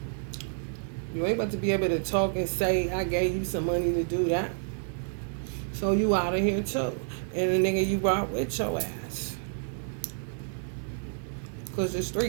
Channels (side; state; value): left; silent; digital silence